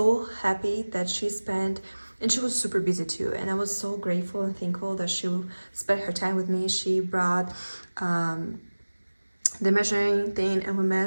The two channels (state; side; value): inverted; both; correlation -1.00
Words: happy that she spent, and she was super busy too, and I was so grateful and thankful that she spent her time with me. She brought the measuring thing, and we